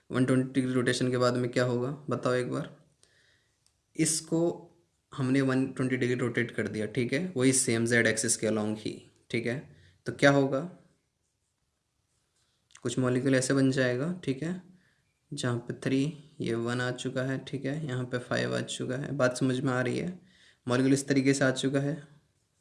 120 डिग्री रोटेशन के बाद में क्या होगा बताओ एक बार। इसको हमने 120 डिग्री रोटेट कर दिया, ठीक है, वही सेम जेड एक्सिस के अलॉन्ग ही, ठीक है। तो क्या होगा, कुछ मॉलिक्यूल ऐसे बन जाएगा, ठीक है, जहाँ पे 3, ये 1 आ चुका है, ठीक है, यहाँ पे 5 आ चुका है। बात समझ में आ रही है, मॉलिक्यूल इस तरीके से आ चुका है,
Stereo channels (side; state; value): both; identical; correlation 1.00